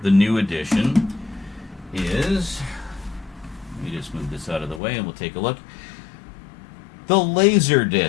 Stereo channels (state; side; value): drops out; right; at 4.8 s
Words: the new edition is, let me just move this out of the way and we'll take a look. The